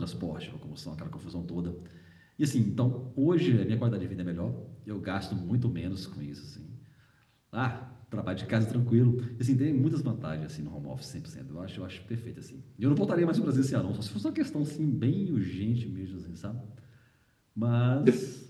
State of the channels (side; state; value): both; identical; correlation 1.00